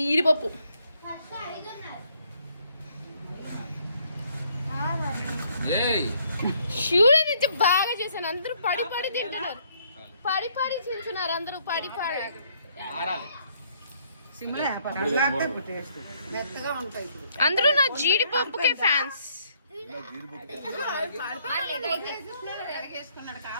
శివుడి నుంచి బాగా చేశాను. అందరూ పడి తింటున్నారు, పడి తింటున్నారు అందరూ పడి. అందరూ నా జీడిపప్పుకే ఫ్యాన్స్.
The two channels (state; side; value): inverted; both; correlation -0.67